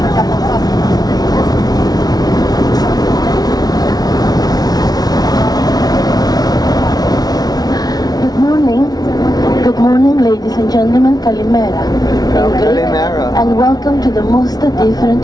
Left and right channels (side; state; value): right; late; 0.19 ms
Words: Good morning, ladies and gentlemen. Kalimera. Kalimera. And welcome to the most